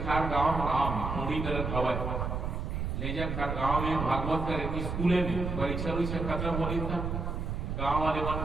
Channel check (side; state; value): right; noise; rumble, 3 dB below the sound